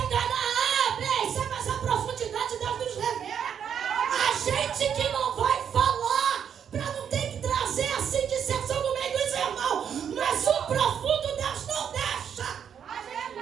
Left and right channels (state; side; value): quieter; left; 8.2 dB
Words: enganar, mas a profundidade Deus nos revela. A gente que não vai falar, para não ter que trazer assim dissensão no meio dos irmãos, mas o profundo Deus não deixa.